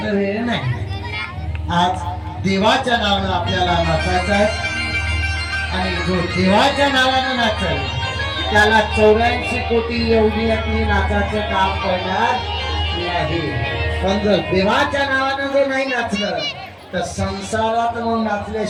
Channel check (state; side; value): identical; both; correlation 1.00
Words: वेळ नाही आज देवाच्या नावानं आपल्याला नाचायचं आहे आणि जो देवाच्या नावानं नाचल त्याला 84 कोटी एवढी नाचाचं काम करणार नाही पण जर देवाच्या नावानं जर नाही नाचलं तर संसारात मग